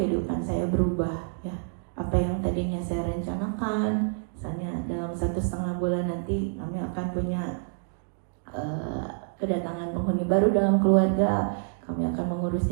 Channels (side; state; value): left; silent; digital silence